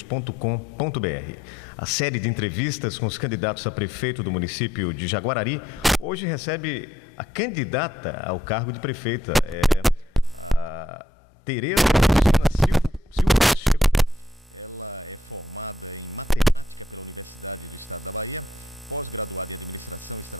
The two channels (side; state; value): both; normal; correlation 0.74